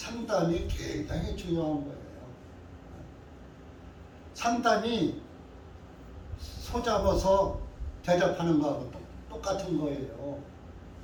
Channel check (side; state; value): both; identical; correlation 1.00